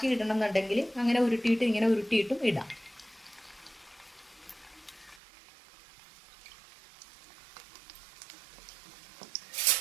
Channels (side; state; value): left; drops out; at 5.2 s